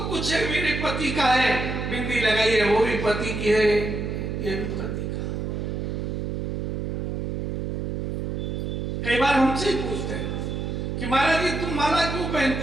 कुछ है मेरे पति का है, बिंदी लगाई है वो भी पति की है, ये भी पति का। कई बार हमसे ही पूछते हैं कि महाराज जी तुम माला क्यों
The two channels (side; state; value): right; noise; hum, 3 dB below the sound